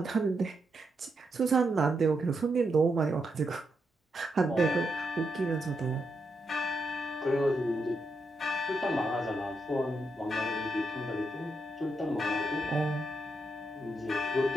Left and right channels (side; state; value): both; normal; correlation 0.82